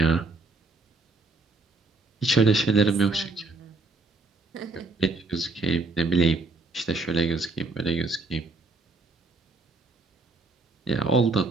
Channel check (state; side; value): quieter; left; 3.4 dB